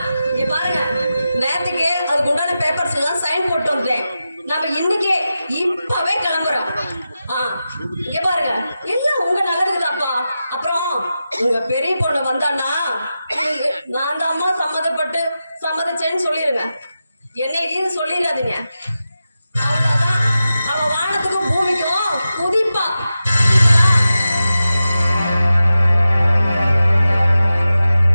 இங்க பாருங்க, நேரத்துக்கு அதுக்கு உண்டான பேப்பர்ஸ் எல்லாம் சைன் போட்டு வந்தேன். நம்ம இன்னைக்கே இப்பவே கிளம்புறோம். இங்க பாருங்க, எல்லாம் உங்க நல்லதுக்குதாப்பா. அப்புறம் உங்க பெரிய பொண்ணு வந்தான்னா நான் தான் அம்மா சம்மதிச்சேன்னு சொல்லிருங்க. என்ன இது சொல்லிடாதீங்க. அவ்வளவுதான், அவ வானத்துக்கும் பூமிக்கும் குதிப்பா.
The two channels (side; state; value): both; inverted; correlation -0.92